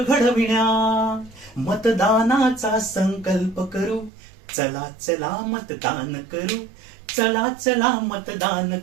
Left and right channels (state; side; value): drops out; left; at 4.1 s